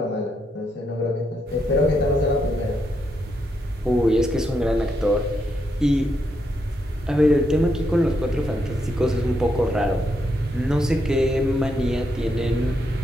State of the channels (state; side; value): normal; both; correlation 0.80